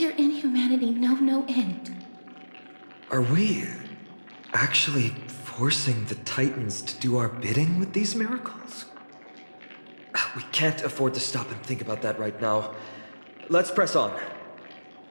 inhumanity know no end? Are we actually forcing the Titans to do our bidding with these miracles? We can't afford to stop and think about that right now. Let's press on.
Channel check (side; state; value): both; inverted; correlation -1.00